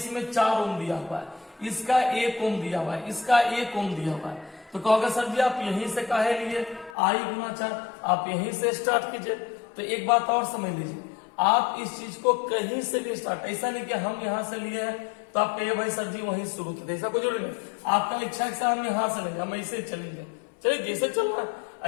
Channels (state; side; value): drops out; right; at 7.0 s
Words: 4 ओम दिया हुआ है, इसका 1 ओम दिया हुआ है, इसका 1 ओम दिया हुआ है, तो कहोगे सर जी आप यहीं से काहे लिए, आई गुना 4, आप यहीं से स्टार्ट कीजिए। तो एक बात और समझ लीजिए, आप इस चीज को कहीं से भी स्टार्ट, ऐसा नहीं कि हम यहां से लिए हैं तो आप कहिए भाई सर जी वहीं शुरू कीजिए, ऐसा कोई जरूरी नहीं। आपका इच्छा है हम यहां से लेंगे, हम ऐसे चलेंगे, चलिए जैसे चलना है,